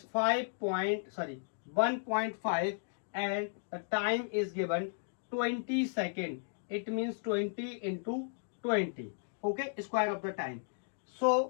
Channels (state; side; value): silent; right; digital silence